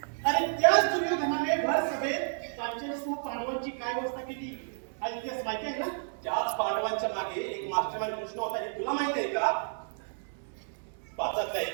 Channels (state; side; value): silent; left; 57 dB below the other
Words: अरे त्याच दुर्योधनाने भर सभेत पांचालीसह पांडवांची काय व्यवस्था केली हा इतिहास माहिती आहे ना त्याच पांडवांच्या मागे एक मास्टरमाइंड कृष्ण होता हे तुला माहिती आहे का पाचातल्या